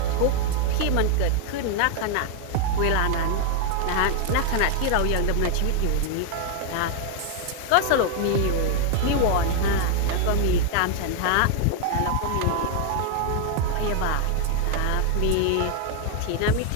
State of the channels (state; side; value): different; both; correlation 0.00